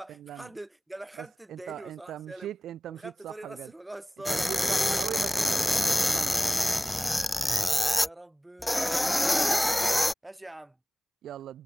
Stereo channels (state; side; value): normal; both; correlation 0.98